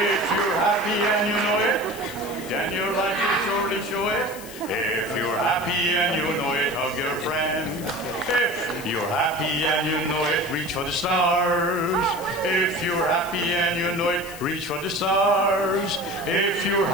you're happy and you know it, then your life will surely show it. If you're happy and you know it, hug your friend. If you're happy and you know it, reach for the stars. If you're happy and you know it, reach for the stars. If you're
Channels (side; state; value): left; noise; hiss, 15 dB below the sound